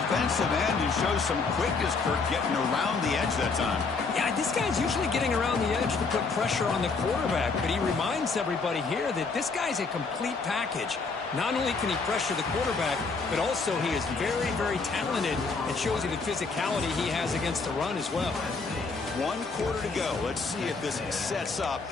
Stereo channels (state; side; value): quieter; right; 4.4 dB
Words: end and shows some quickness, Kirk, getting around the edge that time. Yeah, this guy's usually getting around the edge to put pressure on the quarterback, but he reminds everybody here that this guy's a complete package. Not only can he pressure the quarterback, but also he is very, very talented and shows you the physicality he has against the run as well. 1 quarter to go. Let's see if this sets up